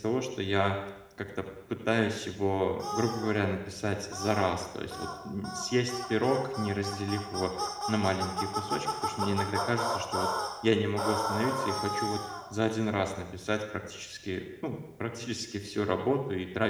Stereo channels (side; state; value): both; identical; correlation 1.00